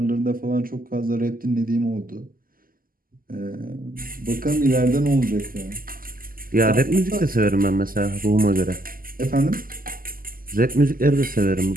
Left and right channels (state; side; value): late; left; 0.42 ms